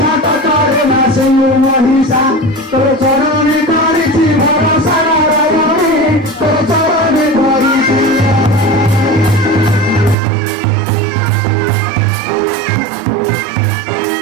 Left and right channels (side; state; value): left; drops out; at 10.2 s